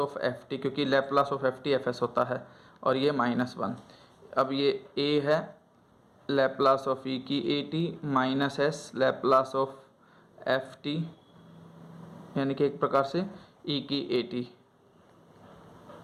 एफ टी, क्योंकि Laplace of F t f s होता है, और ये -1। अब ये ए है लैप्लास ऑफ ई की A T minus S Laplace of F T, यानी कि एक प्रकार से ई की ए टी।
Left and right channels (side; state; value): both; identical; correlation 1.00